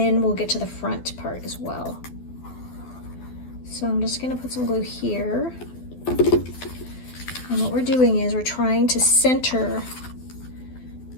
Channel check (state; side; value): late; right; 12 ms